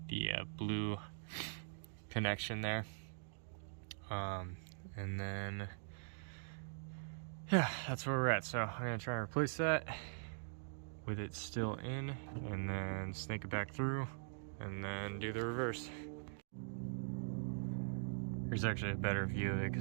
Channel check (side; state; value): left; silent; digital silence